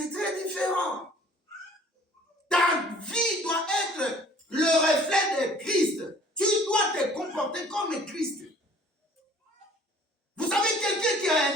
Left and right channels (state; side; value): normal; both; correlation 0.53